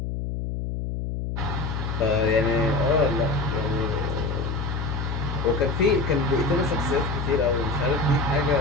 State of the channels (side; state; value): left; noise; hum, 3 dB below the sound